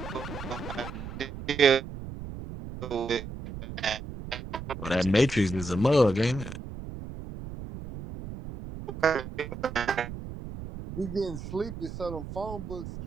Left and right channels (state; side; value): noise; right; rumble, 10 dB below the sound